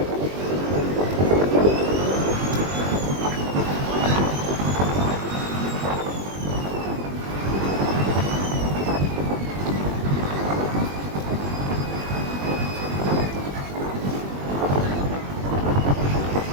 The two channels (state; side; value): late; left; 21 ms